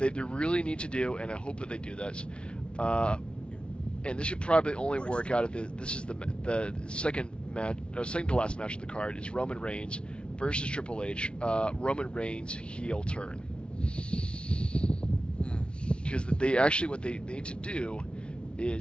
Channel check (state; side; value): late; right; 0.057 ms